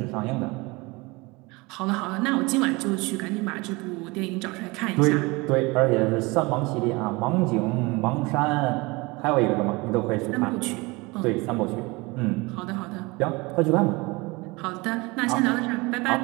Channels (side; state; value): left; quieter; 24.7 dB